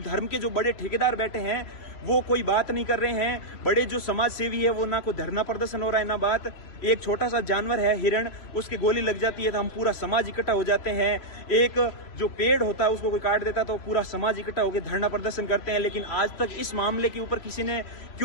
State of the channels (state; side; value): late; right; 3.1 ms